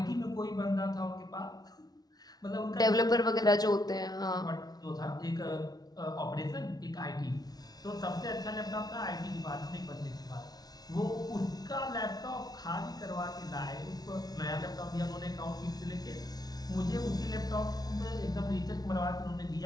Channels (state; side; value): late; right; 0.19 ms